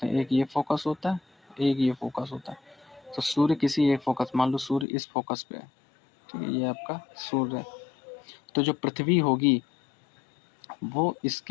हैं, एक ये फोकस होता है, एक ये फोकस होता है। तो सूर्य किसी एक फोकस, मान लो सूर्य इस फोकस पे है, ठीक है, ये आपका सूर्य है। तो जो पृथ्वी होगी वो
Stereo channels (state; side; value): drops out; right; at 4.9 s